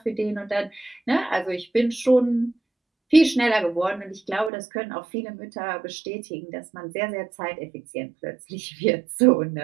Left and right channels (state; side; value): drops out; left; at 4.5 s